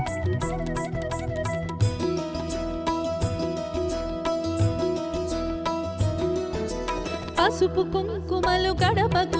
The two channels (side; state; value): both; identical; correlation 1.00